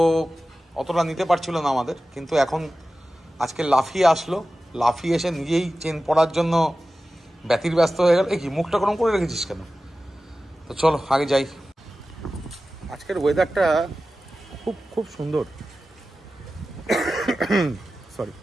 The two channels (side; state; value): both; normal; correlation 0.94